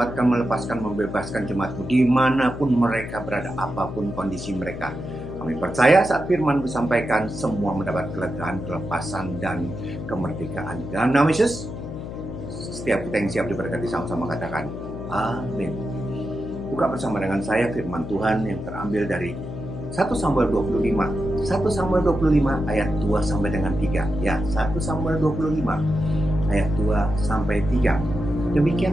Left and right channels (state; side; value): noise; left; hum, 9 dB below the sound